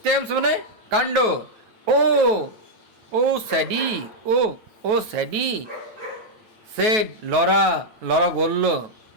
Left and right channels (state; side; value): late; left; 9.3 ms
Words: মানে কাণ্ড। ও স্যাডি, সেড লরা বলল।